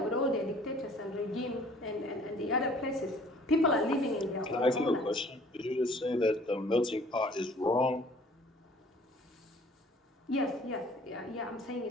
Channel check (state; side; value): normal; both; correlation 0.54